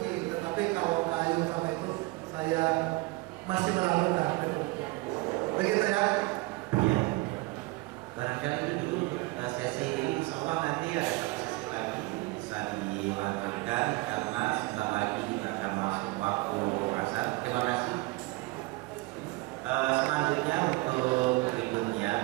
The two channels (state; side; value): quieter; left; 23.0 dB